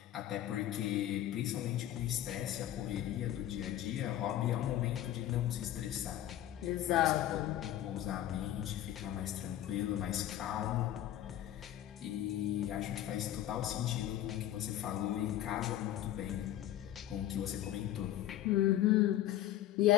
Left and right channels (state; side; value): quieter; right; 12.7 dB